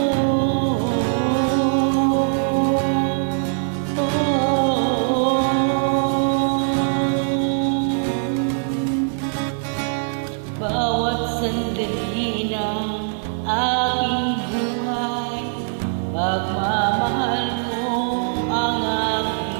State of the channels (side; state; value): left; silent; 65 dB below the other